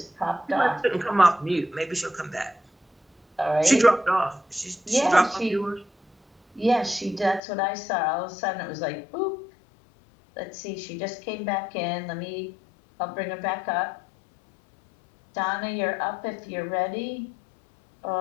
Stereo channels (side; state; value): right; drops out; at 7.4 s